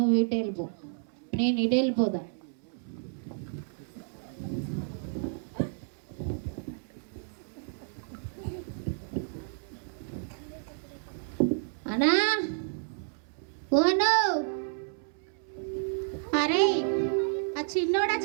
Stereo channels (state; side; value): silent; left; 57 dB below the other